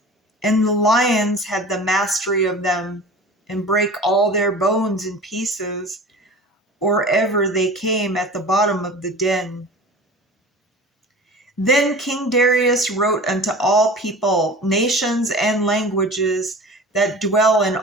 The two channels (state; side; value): normal; both; correlation 0.38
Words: and the lions had the mastery of them, and brake all their bones in pieces, or ever they came at the bottom of the den. Then King Darius wrote unto all people, nations, and languages that dwell in